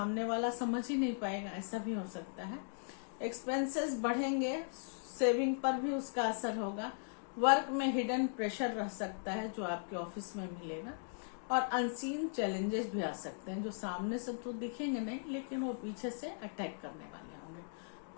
वाला समझ ही नहीं पाएगा, ऐसा भी हो सकता है। एक्सपेंसेस बढ़ेंगे, सेविंग पर भी उसका असर होगा। वर्क में हिडन प्रेशर रह सकता है जो आपके ऑफिस में मिलेगा, और अनसीन चैलेंजेस भी आ सकते हैं जो सामने से तो दिखेंगे नहीं, लेकिन वो पीछे से अटैक करने वाले होंगे।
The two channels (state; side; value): silent; right; digital silence